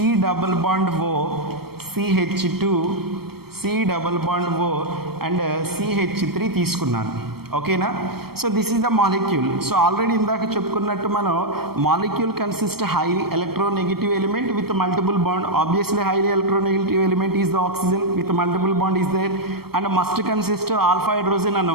double bond O, CH2 C double bond O and CH3 తీసుకున్నాను. ఓకేనా. So this is the molecule. So already ఇందాక చెప్పుకున్నట్టు మనం molecule consist highly electronegative element with multiple bond. Obviously highly electronegative element is the oxygen with multiple bond is there and must consist alpha hydrogen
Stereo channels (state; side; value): late; left; 0.95 ms